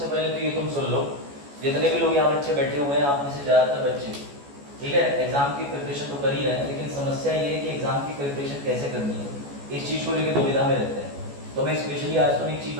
पहले तो ये तुम सुन लो, जितने भी लोग यहाँ बच्चे बैठे हुए हैं, आप में से ज़्यादातर बच्चे, ठीक है, एग्जाम की प्रिपरेशन तो कर ही रहे हैं, लेकिन समस्या ये है कि एग्जाम की प्रिपरेशन कैसे करनी है, इस चीज़ को लेकर दुविधा में रहते हैं। तो मैं स्पेशली आज तुम्हें एक चीज़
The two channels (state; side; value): late; left; 14 ms